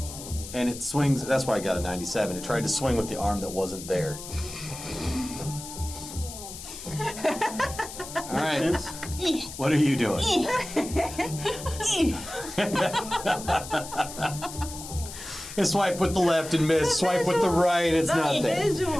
And it swings, that's why I got a 97. It tried to swing with the arm that wasn't there. All right. Sense? What are you doing? Swipe with the left and miss. Swipe with the right, it's nothing. Visual.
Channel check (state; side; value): noise; left; hiss, 12 dB below the sound